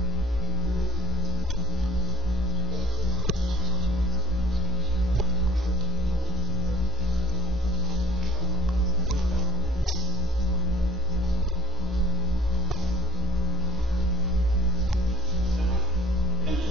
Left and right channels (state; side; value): normal; both; correlation 0.36